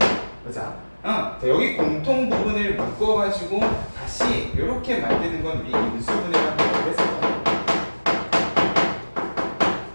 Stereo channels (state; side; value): inverted; both; correlation -1.00